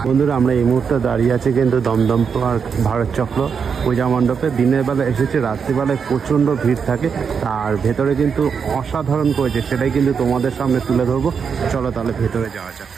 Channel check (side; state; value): left; quieter; 6.4 dB